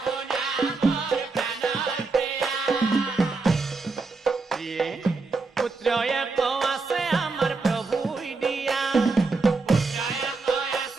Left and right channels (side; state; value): left; quieter; 4.0 dB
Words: পুত্ৰয়ে আছে আমাৰ প্ৰভুই দিয়া